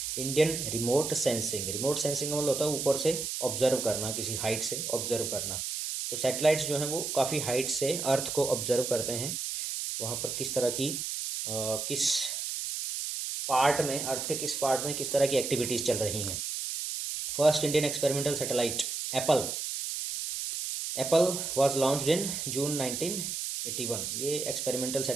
Indian remote sensing. Remote sensing का मतलब होता है ऊपर से ऑब्जर्व करना, किसी हाइट से ऑब्जर्व करना। तो सैटेलाइट्स जो हैं वो काफ़ी हाइट से अर्थ को ऑब्जर्व करते हैं, वहाँ पर किस तरह की किस पार्ट में, अर्थ के किस पार्ट में किस तरह की एक्टिविटीज़ चल रही हैं। First Indian experimental satellite Apple was launched in June 1981। ये एक्सपेरिमेंटल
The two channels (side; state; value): right; noise; hiss, 3 dB below the sound